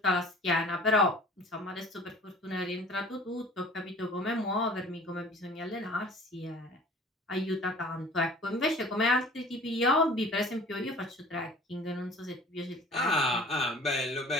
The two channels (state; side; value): normal; both; correlation 0.47